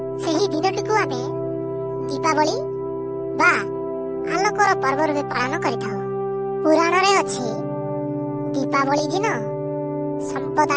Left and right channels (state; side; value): identical; both; correlation 1.00